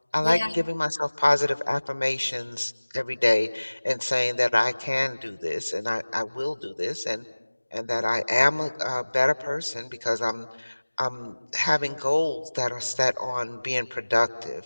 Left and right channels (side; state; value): both; inverted; correlation -1.00